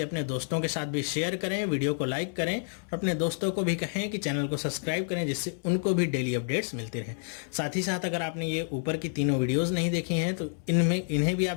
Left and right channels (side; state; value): right; silent; 59 dB below the other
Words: अपने दोस्तों के साथ भी शेयर करें, वीडियो को लाइक करें और अपने दोस्तों को भी कहें कि चैनल को सब्सक्राइब करें, जिससे उनको भी डेली अपडेट्स मिलती रहें। साथ ही साथ अगर आपने ये ऊपर की तीनों वीडियोज़ नहीं देखी हैं तो इन्हें भी आप